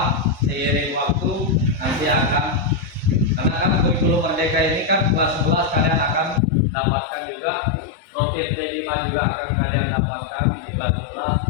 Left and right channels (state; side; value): drops out; right; at 6.4 s